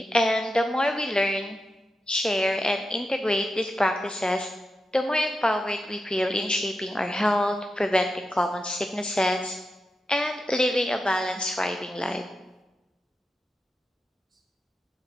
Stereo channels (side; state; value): both; normal; correlation 0.88